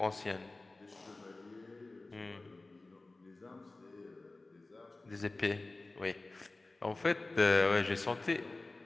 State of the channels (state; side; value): quieter; right; 3.2 dB